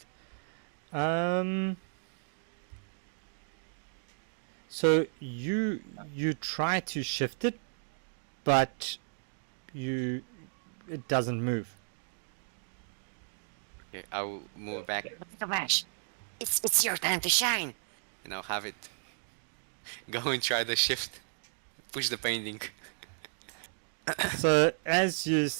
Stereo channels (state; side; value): silent; left; digital silence